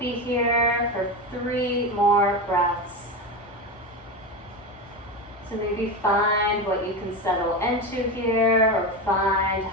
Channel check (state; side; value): normal; both; correlation 0.19